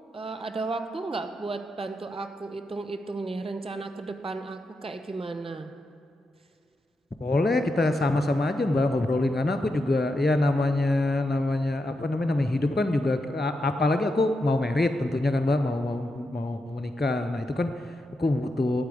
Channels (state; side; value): normal; both; correlation 0.86